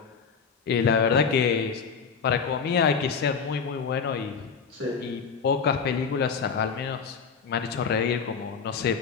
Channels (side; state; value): right; quieter; 5.9 dB